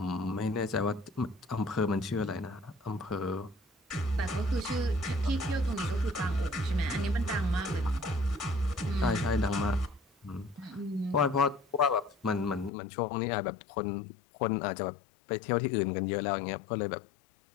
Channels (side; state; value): right; drops out; at 12.7 s